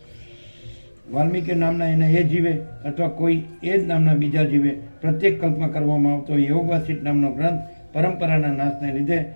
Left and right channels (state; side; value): inverted; both; correlation -1.00